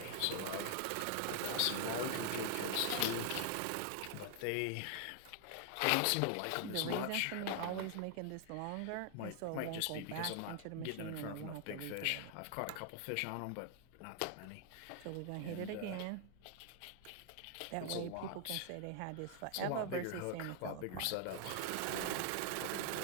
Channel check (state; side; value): different; both; correlation 0.00